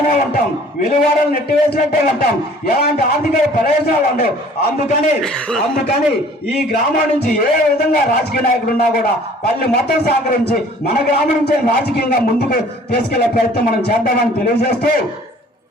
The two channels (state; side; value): normal; both; correlation 0.52